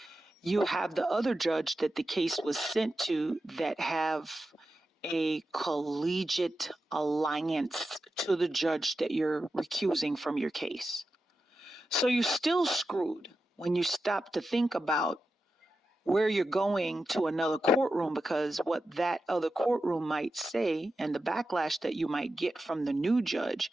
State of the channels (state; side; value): normal; both; correlation 0.90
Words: you have the other judge that the case was sent to that have a collegiate alliance to the judge that you're recusing from your case. So you're still screwed when you stop to think about where you're going to another courtroom, because what that other courtroom might say and the backlash that you might get from the new judge